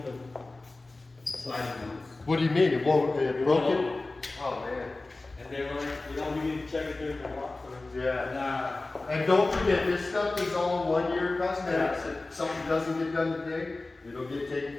the sliding doors. What do you mean? It won't? It broke won't. it? Oh man. And they were like, we need to check it during the walk. Yeah. And don't forget, this stuff is all 1 year cosmetics. If something doesn't get done today, it'll get taken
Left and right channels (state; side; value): quieter; right; 3.2 dB